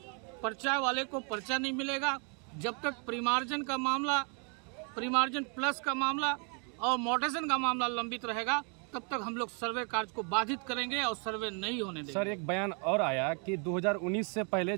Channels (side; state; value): left; quieter; 38.2 dB